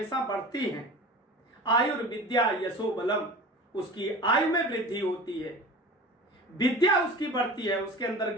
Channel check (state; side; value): normal; both; correlation 0.37